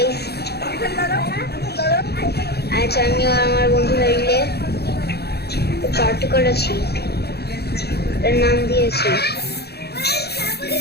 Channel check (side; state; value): right; late; 0.47 ms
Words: আজ আমি আর আমার বন্ধুরা মিলে পার্টি করেছি। এর নাম দিয়েছি